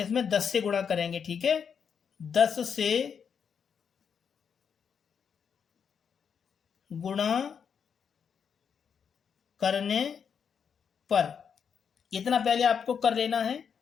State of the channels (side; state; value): right; quieter; 7.0 dB